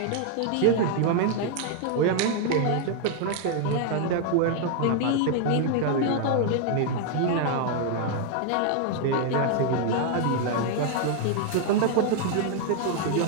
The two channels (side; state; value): both; different; correlation 0.00